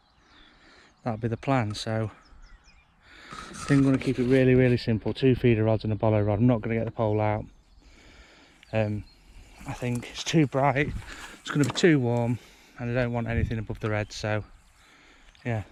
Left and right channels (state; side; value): identical; both; correlation 1.00